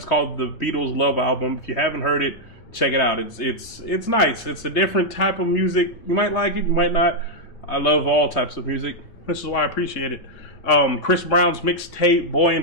called the Beatles Love Album. If you haven't heard it, check it out. It's nice. It's a different type of music. You might like it, you might not. I love all types of music. This is why I appreciate it. Chris Brown's mixtape, Boy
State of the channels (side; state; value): right; late; 3.3 ms